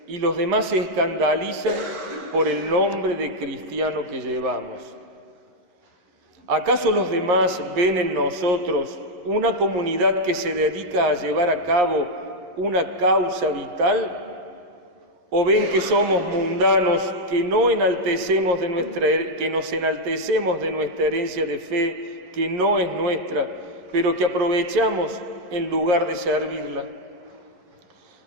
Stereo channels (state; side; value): late; left; 11 ms